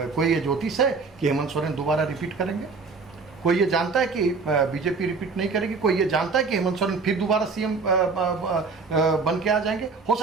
ये ज्योतिष है कि हेमंत सोरेन दोबारा रिपीट करेंगे? कोई ये जानता है कि बीजेपी रिपीट नहीं करेगी? कोई ये जानता है कि हेमंत सोरेन फिर दोबारा सीएम बन के आ जाएंगे? हो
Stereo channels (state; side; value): quieter; left; 4.5 dB